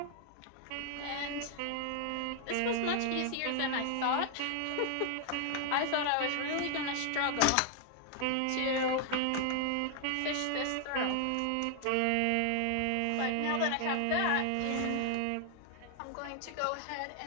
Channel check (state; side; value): different; both; correlation 0.00